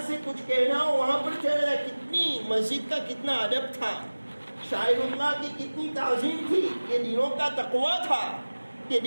سے کچھ کہنا ہو وہاں پر چلا جائے۔ کتنی مسجد کا کتنا ادب تھا، شاعر اللہ کی کتنی تعظیم تھی، یہ دنوں کا تقویٰ تھا، یہ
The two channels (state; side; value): inverted; both; correlation -1.00